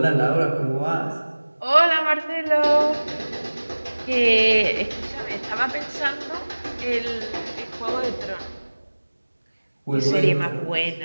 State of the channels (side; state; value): both; inverted; correlation -1.00